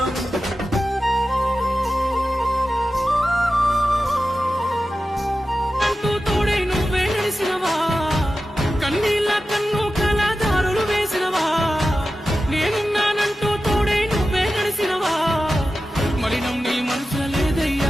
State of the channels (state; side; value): normal; both; correlation 0.93